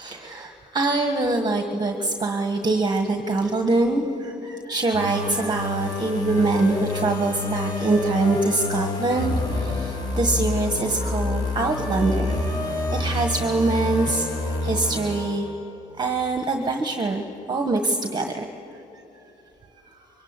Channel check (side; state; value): both; normal; correlation 0.62